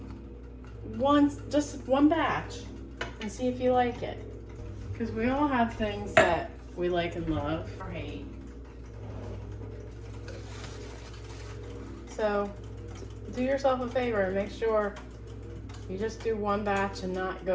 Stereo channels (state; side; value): identical; both; correlation 1.00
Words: just one batch and see if you like it. Because we all have things that we like and love or hate. So do yourself a favor and make sure you just do one batch and not